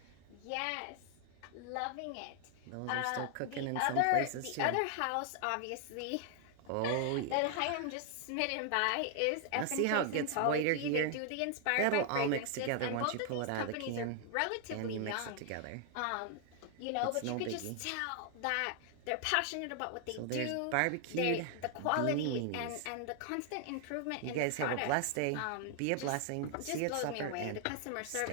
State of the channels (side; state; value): both; different; correlation 0.00